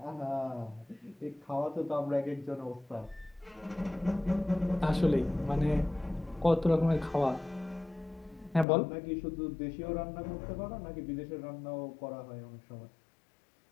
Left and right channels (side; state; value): right; drops out; at 8.7 s